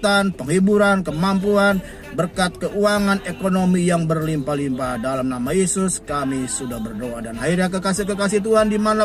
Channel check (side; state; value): both; identical; correlation 1.00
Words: penghiburan, kemampuan, berkat keuangan, ekonomi yang berlimpah-limpah. Dalam nama Yesus kami sudah berdoa. Dan akhirnya kekasih-kekasih Tuhan